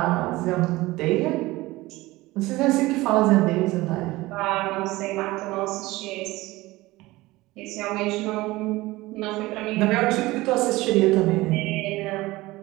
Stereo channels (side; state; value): left; quieter; 19.5 dB